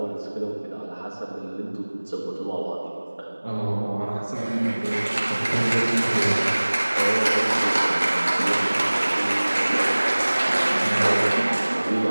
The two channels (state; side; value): inverted; both; correlation -1.00